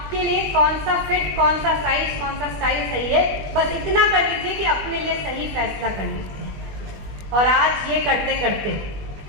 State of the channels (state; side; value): late; left; 21 ms